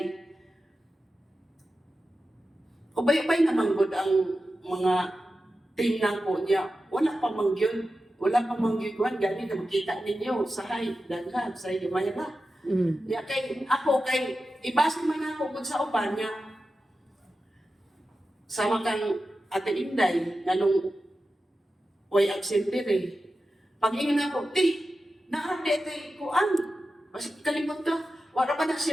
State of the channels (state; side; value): normal; both; correlation 0.92